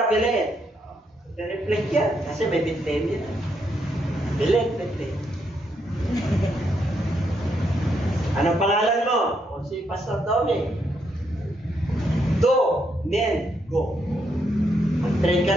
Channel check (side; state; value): both; normal; correlation 0.77